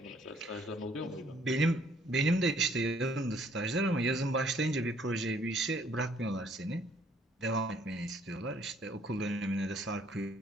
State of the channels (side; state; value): both; normal; correlation 0.62